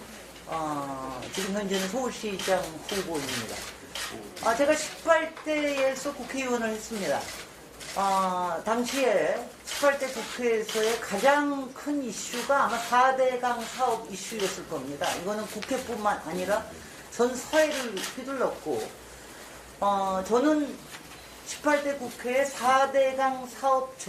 지금 현재는 서울시장 후보입니다. 제가 18대에서 국회의원을 했습니다. 당시에 18대 국회에서의 가장 큰 이슈가 아마 4대강 사업 이슈였을 겁니다. 이거는 국회뿐만 아니라 전 사회를 휘둘렀고, 저는 18대 국회의 4대강 사업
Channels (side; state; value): both; identical; correlation 1.00